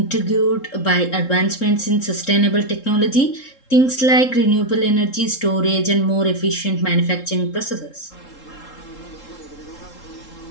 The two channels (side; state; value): right; late; 3.7 ms